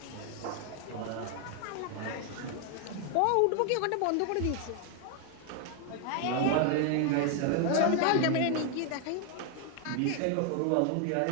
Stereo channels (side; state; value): both; different; correlation 0.00